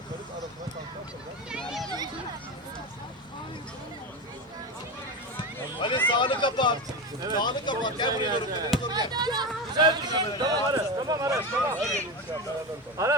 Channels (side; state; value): both; normal; correlation 0.19